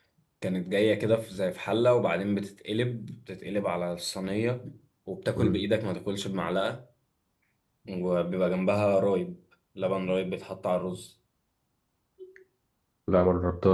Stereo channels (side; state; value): both; identical; correlation 1.00